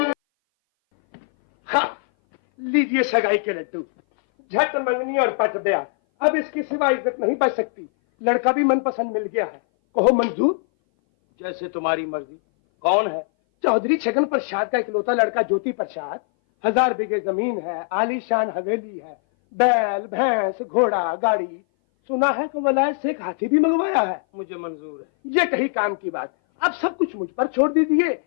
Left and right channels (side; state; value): right; silent; 59 dB below the other